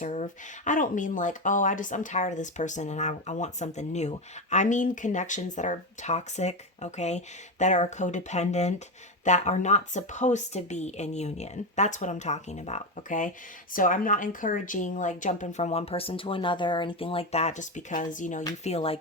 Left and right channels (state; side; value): normal; both; correlation 0.14